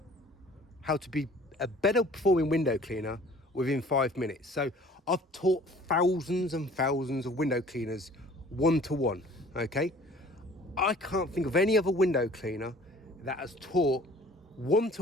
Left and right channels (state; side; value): normal; both; correlation 0.51